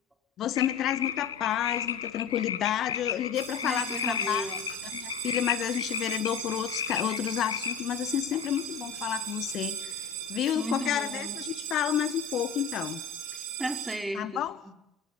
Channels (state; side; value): quieter; right; 6.4 dB